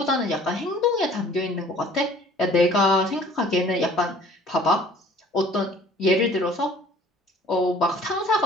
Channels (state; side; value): normal; both; correlation 0.52